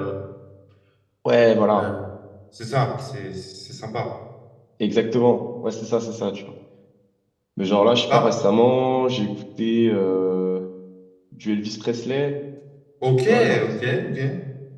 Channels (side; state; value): both; identical; correlation 1.00